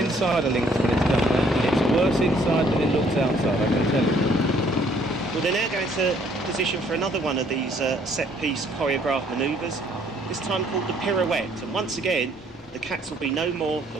inside a Lynx when it's done that, and it's worse inside than it looks outside, I can tell you. Well, they're now going to position for another one of these set-piece choreographed manoeuvres, this time called the Pirouette. And once again, the cats will be no more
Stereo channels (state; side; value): normal; both; correlation 0.63